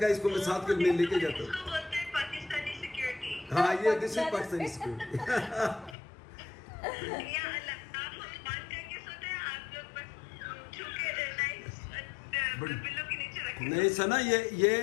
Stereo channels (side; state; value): right; drops out; at 6.0 s